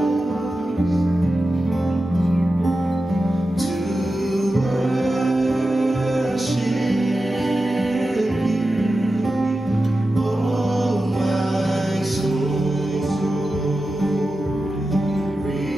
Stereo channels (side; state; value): both; normal; correlation 0.92